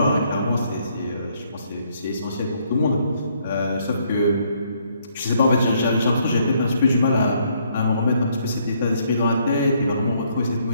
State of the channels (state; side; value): inverted; both; correlation -0.69